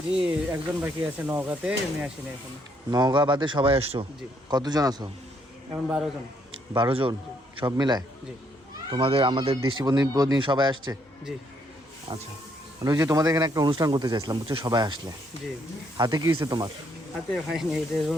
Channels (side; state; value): both; normal; correlation 0.71